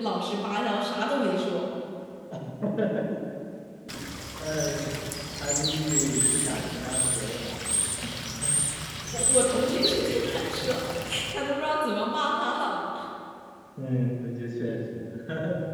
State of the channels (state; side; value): identical; both; correlation 1.00